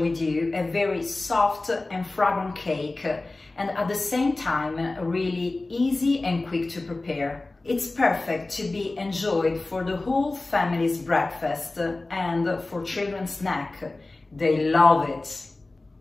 you a very soft and fragrant cake and at the same time really easy and quick to prepare. It's perfect to be enjoyed for the whole family's breakfast and for children's snack. They love it.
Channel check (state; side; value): quieter; right; 3.1 dB